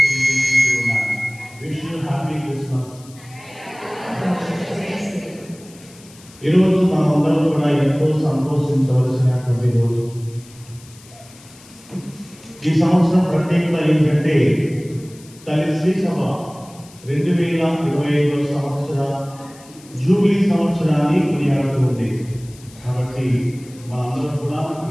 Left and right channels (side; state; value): left; noise; hiss, 23 dB below the sound